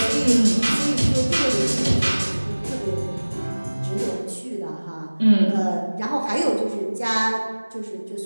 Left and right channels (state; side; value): inverted; both; correlation -1.00